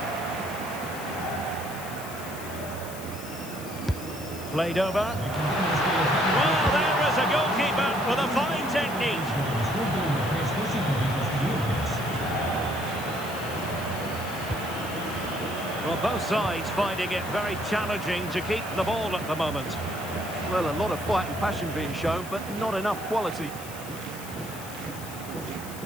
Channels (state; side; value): noise; left; hiss, 14 dB below the sound